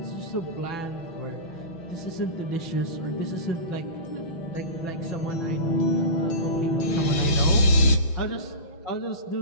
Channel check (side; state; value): right; late; 6.1 ms